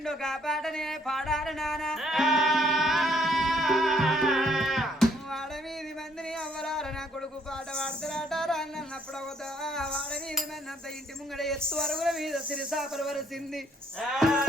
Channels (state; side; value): normal; both; correlation 0.67